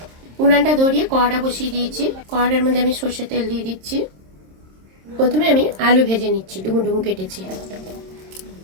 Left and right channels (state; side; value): late; left; 26 ms